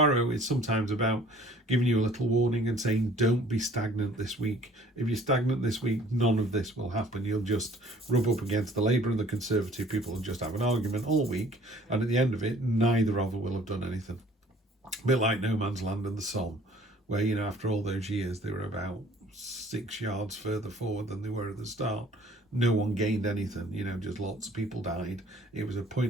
is sometimes about giving you a little warning and saying, don't be stagnant this week. If you're stagnant this week, none of this will happen. You'll just rub up against the Labour and the Conservative people and just have an argument all week, and at the end of it, neither of them will have done anything. A bit like No Man's Land and the Somme, where, you know, after all those years, they were about 6 yards further forward than they were at the start. No one gained anything, you know, just lots of people died. It was a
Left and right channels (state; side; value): normal; both; correlation 0.54